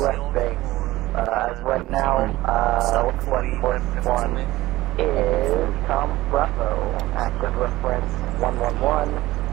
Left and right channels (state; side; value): quieter; left; 17.5 dB